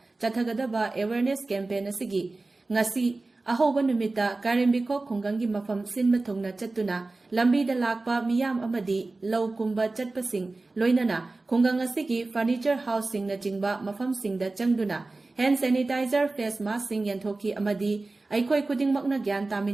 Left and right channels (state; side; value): quieter; left; 3.3 dB